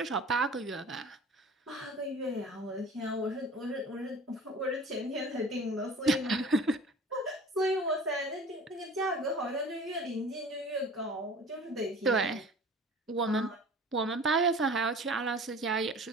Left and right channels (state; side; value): normal; both; correlation 0.43